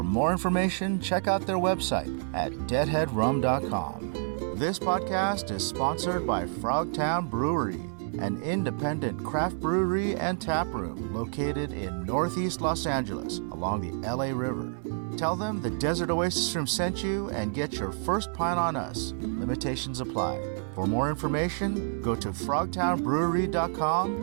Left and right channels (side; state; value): left; silent; 59 dB below the other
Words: more information, check out their website at deadheadrum.com. This podcast is sponsored by Frogtown Brewery, an independent craft brewery and tap room located in Northeast Los Angeles along the LA River. Tell them the Desert Oasis Room sent you and get your first pint on us. Limitations apply. For more information, go to